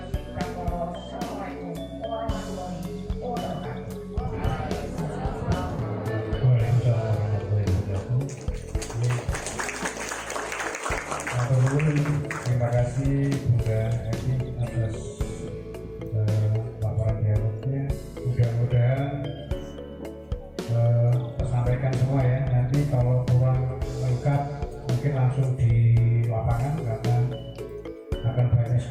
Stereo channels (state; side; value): identical; both; correlation 1.00